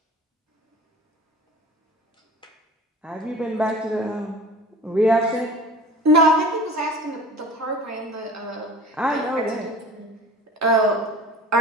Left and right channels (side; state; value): both; normal; correlation 0.41